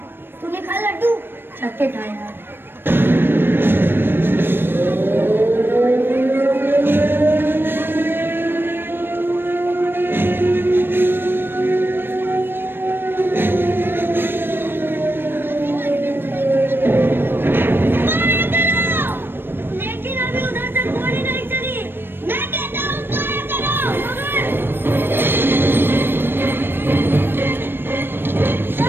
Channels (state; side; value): late; left; 0.10 ms